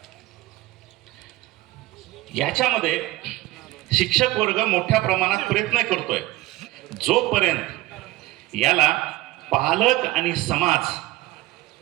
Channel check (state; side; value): quieter; left; 18.3 dB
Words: याच्यामध्ये शिक्षक वर्ग मोठ्या प्रमाणात प्रयत्न करतोय जोपर्यंत याला पालक आणि समाज